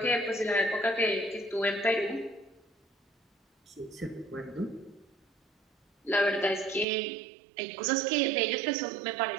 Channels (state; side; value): drops out; left; at 6.9 s